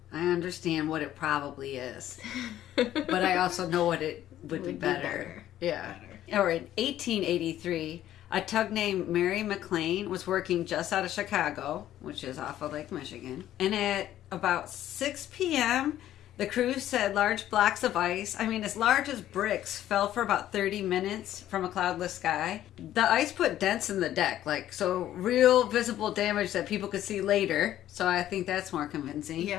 I understand what it probably is. But I also know what it would be better. Yeah. Or in 1883, a tug named Mary McLean was working just out of Chicago, which is off of Lake Michigan. And at about 6 p.m., the crew said large blocks of ice, as large as bricks, fell for about 30 minutes from a cloudless sky. The ice put dents in the deck, so real visible damage that people could see later. So I think that's more convincing.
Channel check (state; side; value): quieter; right; 12.5 dB